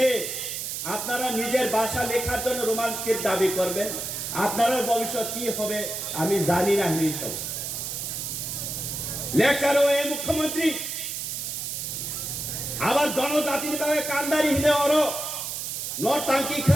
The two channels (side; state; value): right; noise; hiss, 4 dB below the sound